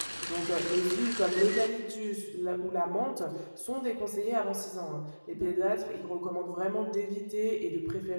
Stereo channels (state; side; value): inverted; both; correlation -1.00